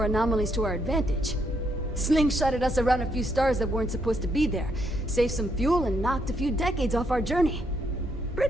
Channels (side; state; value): both; normal; correlation 0.75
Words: anomalies to our advantage. Slingshotted us around a few stars that weren't supposed to be there, saved some fuel and knocked a few decades off our journey.